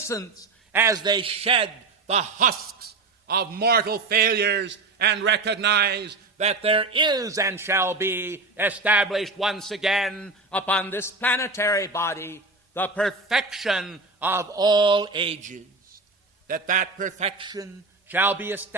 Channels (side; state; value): left; quieter; 3.6 dB